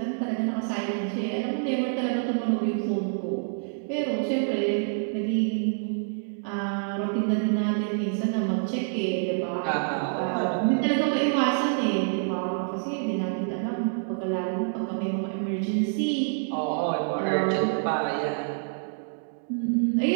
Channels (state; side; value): silent; left; digital silence